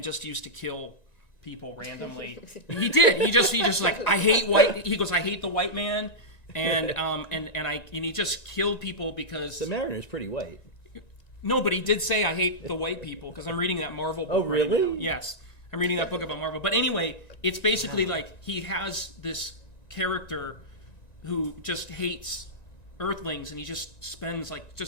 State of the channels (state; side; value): late; right; 1.9 ms